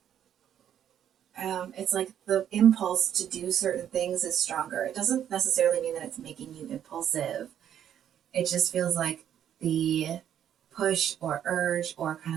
it's like the impulse to do certain things is stronger. It doesn't necessarily mean that it's making you impulsive. It just feels like the push or urge or kind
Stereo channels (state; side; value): quieter; left; 9.9 dB